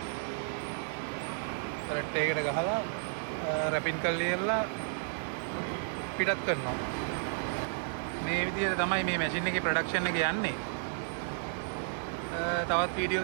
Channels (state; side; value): silent; left; 56 dB below the other